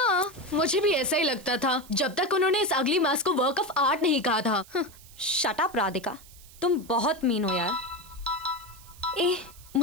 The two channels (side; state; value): right; noise; hiss, 22 dB below the sound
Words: मुझे भी ऐसा ही लगता था जब तक उन्होंने इस अगली मास्क को वर्क ऑफ आर्ट नहीं कहा था। शट अप राधिका, तुम बहुत मीन हो यार। ए,